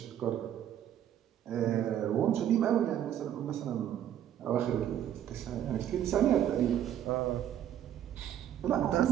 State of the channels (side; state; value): left; quieter; 10.6 dB